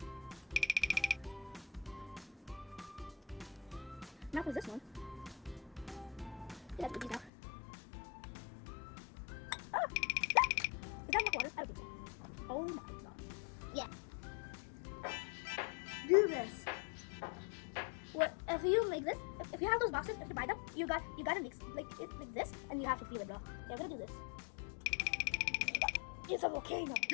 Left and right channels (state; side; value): drops out; right; at 7.3 s